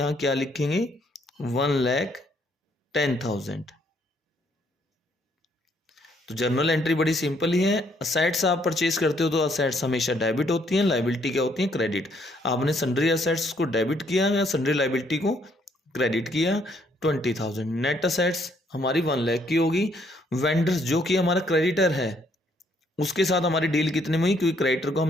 क्या लिखेंगे, 1,10,000। तो जर्नल एंट्री बड़ी सिंपल ही है। असेट्स आप परचेज करते हो तो असेट्स हमेशा डेबिट होती हैं, लाइबिलिटी क्या होती है, क्रेडिट। आपने सन्ड्री असेट्स को डेबिट किया या सन्ड्री लाइबिलिटी को क्रेडिट किया, 20,000। नेट असेट्स हमारी 1 लाख की होगी। वेंडर्स जो कि हमारा क्रेडिटर है उसके साथ हमारी डील कितने में हुई, क्योंकि क्रेडिटर को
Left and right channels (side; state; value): both; normal; correlation 0.69